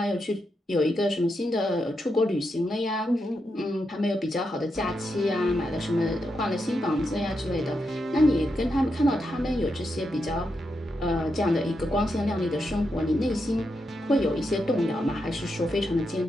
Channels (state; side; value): normal; both; correlation 0.84